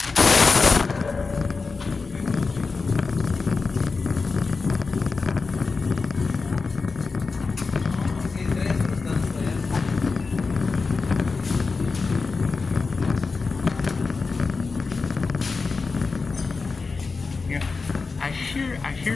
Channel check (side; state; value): right; quieter; 4.4 dB